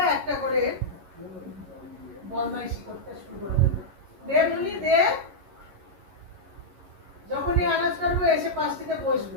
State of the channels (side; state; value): left; late; 11 ms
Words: একটা করে বদমাইশি করতে শুরু করে দেবে। দে মুনি দে, যখনই আনাজ করবো এসে পাশটিতে